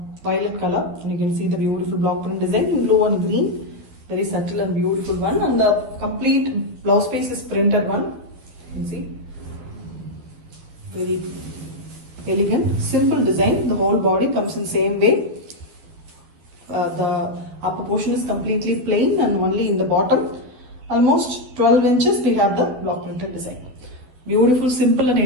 violet color. And you can see the beautiful block print design in blue and green. Very subtle and beautiful one. And the complete blouse piece is printed one. You can see. Very elegant, simple design. The whole body comes in same way. The upper portion is completely plain, and only in the bottom, almost 12 inches, we have the block printed design. Beautiful, simple and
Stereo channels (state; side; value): late; left; 12 ms